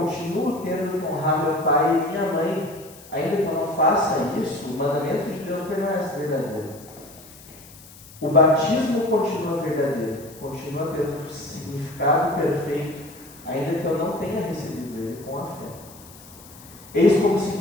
tendo que honrar meu pai e minha mãe, ainda que eu não faça isso, o mandamento de Deus permanece verdadeiro. O batismo continua verdadeiro, continua tendo significado perfeito, ainda que eu não tenha recebido ele com a fé. Eis como se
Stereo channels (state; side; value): noise; left; hiss, 20 dB below the sound